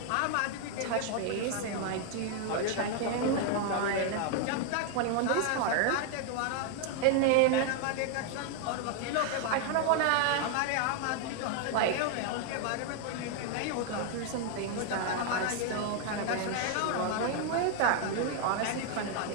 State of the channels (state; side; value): different; both; correlation 0.00